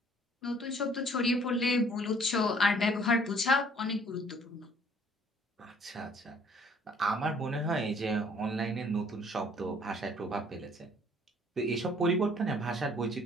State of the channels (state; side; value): normal; both; correlation 0.59